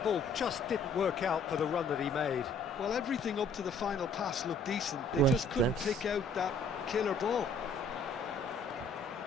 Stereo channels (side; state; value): right; quieter; 3.0 dB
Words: ball just didn't work out for the run that he made. Well, everything up to the final pass looked decent. They just couldn't pick out that killer ball.